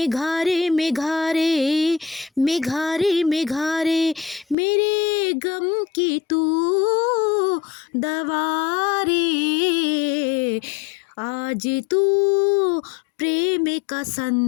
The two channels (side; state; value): right; drops out; at 4.5 s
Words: मेघारे, मेघारे मेघारे, मेरे गम की तू दवा रे। आज तू प्रेम का